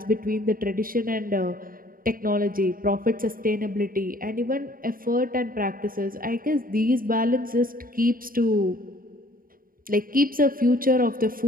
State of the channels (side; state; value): left; late; 0.41 ms